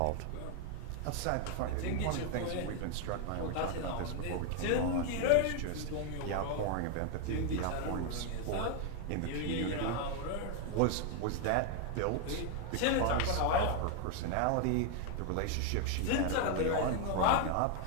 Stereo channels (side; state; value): both; different; correlation 0.01